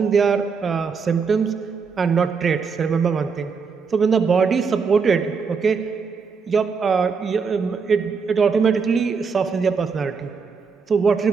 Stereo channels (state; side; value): quieter; left; 5.4 dB